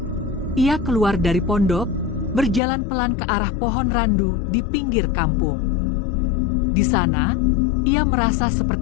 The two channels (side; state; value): right; drops out; at 2.6 s